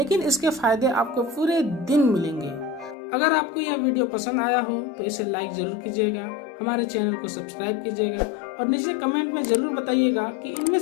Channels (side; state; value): right; drops out; at 3.0 s